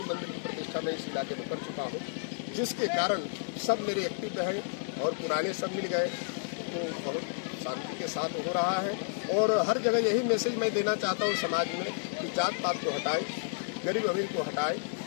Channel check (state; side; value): silent; right; 57 dB below the other